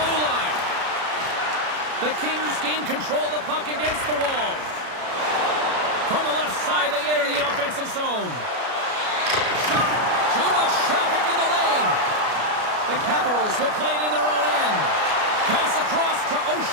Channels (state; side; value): late; left; 33 ms